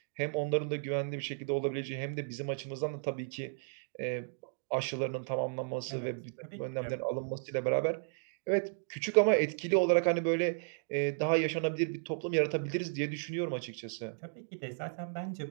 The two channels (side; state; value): left; silent; digital silence